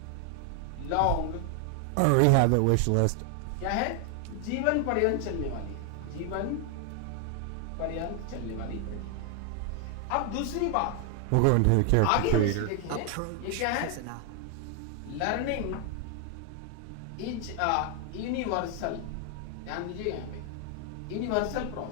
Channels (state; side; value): different; both; correlation 0.00